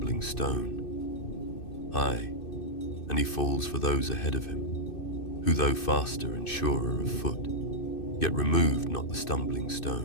stone. Aye, and he falls for those ahead of him, who though faster and surer of foot, yet removed not the stumbling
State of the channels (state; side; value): late; right; 2.6 ms